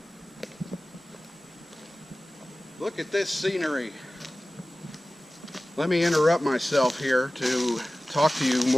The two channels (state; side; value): normal; both; correlation 0.97